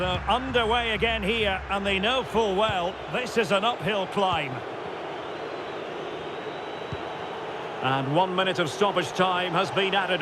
underway again here, and they know full well this is an uphill climb. And 1 minute of stoppage time has been added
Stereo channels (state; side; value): identical; both; correlation 1.00